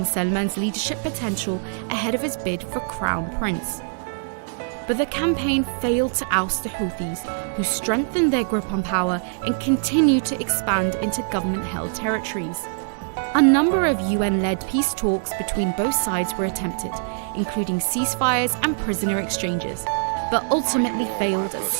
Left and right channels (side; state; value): left; silent; digital silence